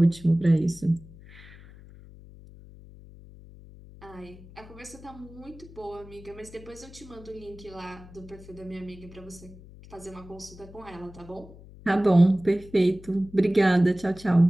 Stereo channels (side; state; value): left; noise; hum, 19 dB below the sound